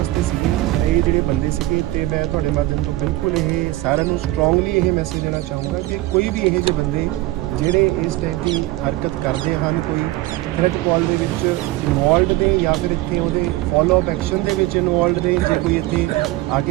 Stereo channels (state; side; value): quieter; left; 18.0 dB